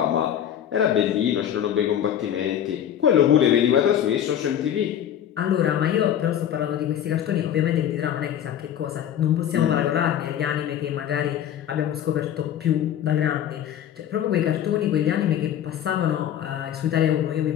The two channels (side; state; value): right; quieter; 10.1 dB